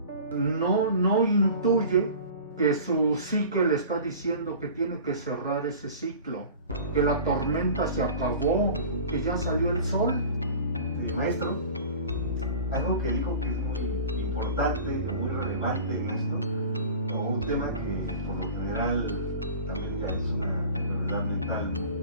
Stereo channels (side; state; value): both; inverted; correlation -0.39